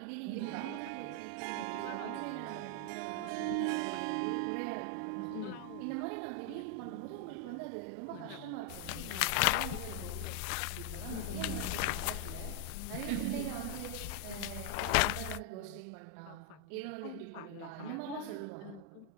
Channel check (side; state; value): both; different; correlation 0.00